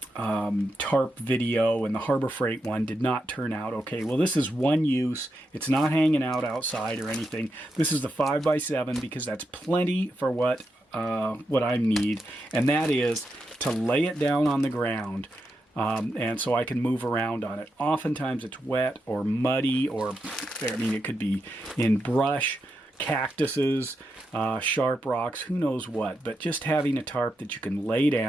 tarp video, and the Harbor Freight one did not turn out okay. Well, this is one use. It's not hanging out outside or anything. This is the 5x7 because that's plenty for what I need, and that is to lay it down on the ground, and so I can move around on it. Oftentimes it's wet or muddy, or it could be in brush, cactuses, sharp rocks, who knows what. But just having a tarp that you can lay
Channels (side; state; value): both; normal; correlation 0.85